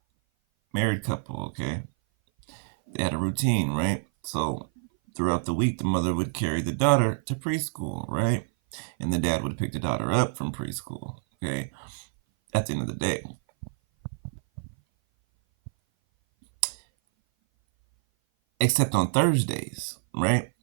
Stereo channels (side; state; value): left; silent; 57 dB below the other